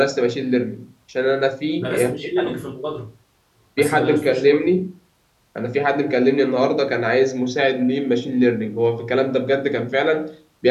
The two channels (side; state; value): both; identical; correlation 1.00